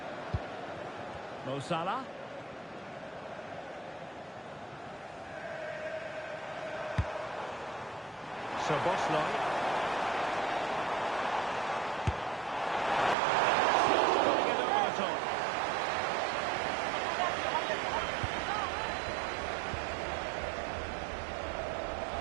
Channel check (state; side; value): drops out; left; at 13.2 s